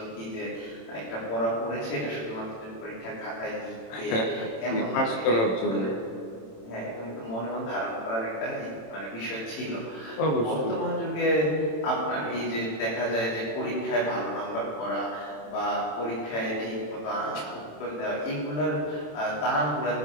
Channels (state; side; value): late; right; 27 ms